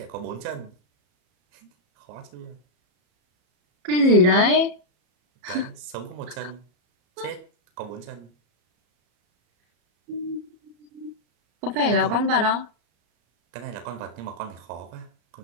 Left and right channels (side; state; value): left; late; 33 ms